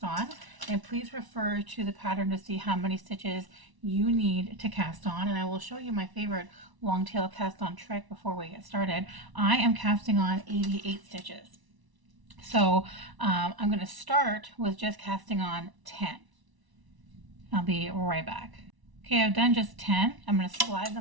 on, and please refer to the pattern to see how many stitches you need to cast on, and I will show you my favorite long tail cast on trick before we get started. I am casting on 88 stitches. So I'm going to start with just casting on 10. I'll be right back. Okay, I've done just 10. I'm going to slide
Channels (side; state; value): left; late; 1.0 ms